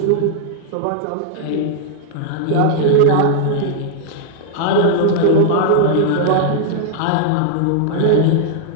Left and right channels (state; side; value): different; both; correlation -0.01